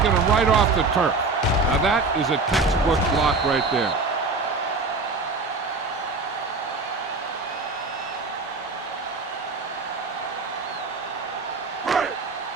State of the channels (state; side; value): quieter; left; 3.8 dB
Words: him right off the turf. Now that is a textbook block right there.